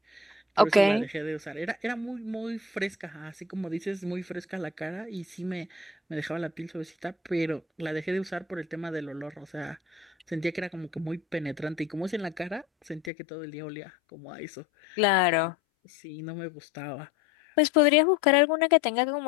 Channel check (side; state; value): right; drops out; at 13.1 s